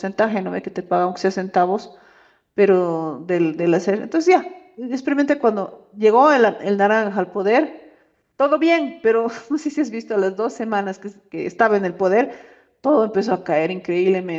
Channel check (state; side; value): identical; both; correlation 1.00